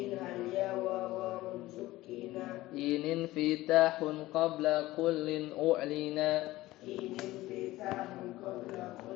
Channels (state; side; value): quieter; right; 17.5 dB